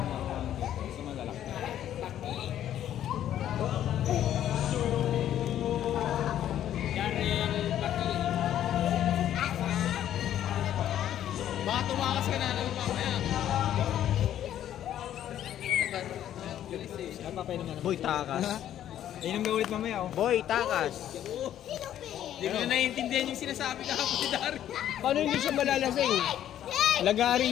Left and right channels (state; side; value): quieter; right; 11.3 dB